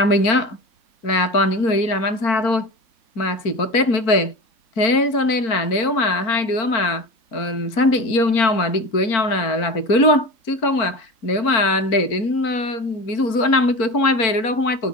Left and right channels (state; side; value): late; right; 4.4 ms